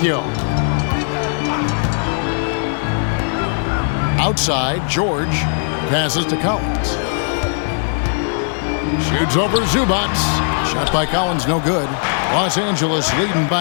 Outside, George passes to Collins. Shoots over Zubats. Shot by Collins, no good. Los Angeles leading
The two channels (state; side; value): silent; right; digital silence